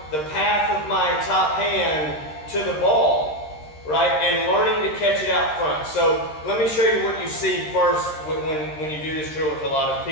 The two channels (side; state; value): right; late; 13 ms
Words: the path of my top hand to the ball, right? And learning to catch it out front. So let me show you what you see first when you do this drill with a lot of